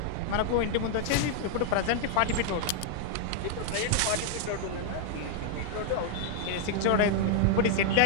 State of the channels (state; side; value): different; both; correlation 0.00